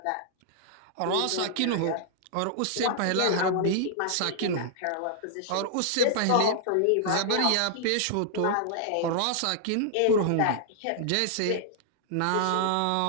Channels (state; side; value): different; both; correlation -0.01